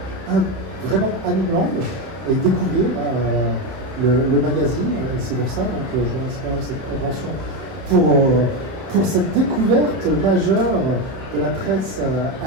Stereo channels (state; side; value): late; left; 31 ms